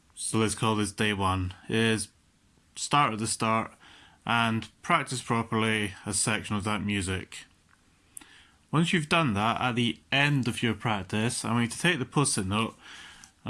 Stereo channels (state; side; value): identical; both; correlation 1.00